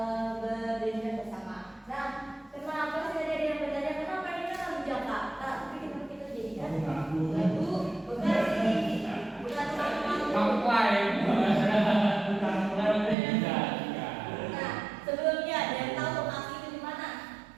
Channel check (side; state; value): left; drops out; at 13.2 s